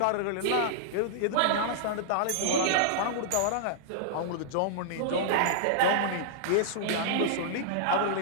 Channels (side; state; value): both; different; correlation -0.02